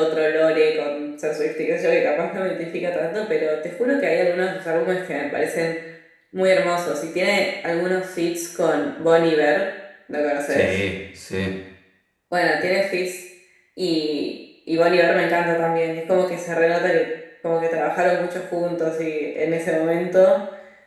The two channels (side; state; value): both; identical; correlation 1.00